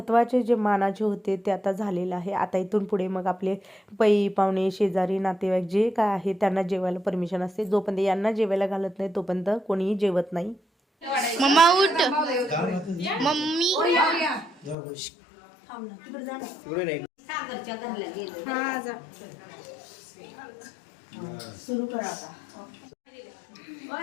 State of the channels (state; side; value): drops out; right; at 14.8 s